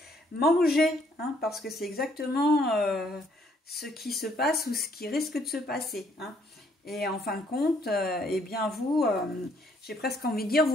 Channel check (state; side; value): normal; both; correlation 0.67